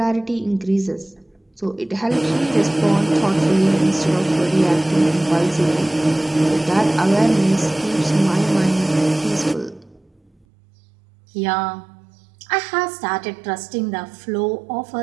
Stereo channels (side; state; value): left; drops out; at 10.5 s